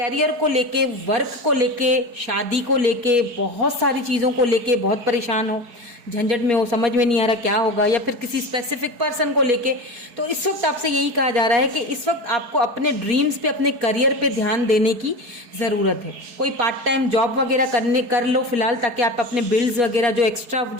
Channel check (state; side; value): late; left; 4.7 ms